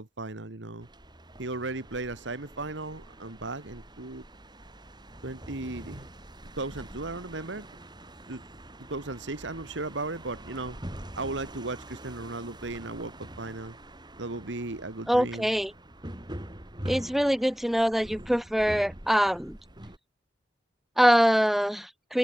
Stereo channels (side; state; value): both; normal; correlation 0.86